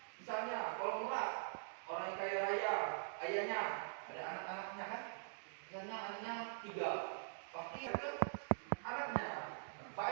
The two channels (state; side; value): silent; left; digital silence